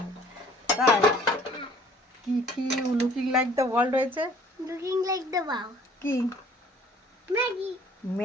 তাই কি কি লুকিং লাইক দ্য ওয়ার্ল্ড হয়েছে? লুকিং লাইক দ্য ওয়াও কি ম্যাগি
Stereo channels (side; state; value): both; normal; correlation 0.55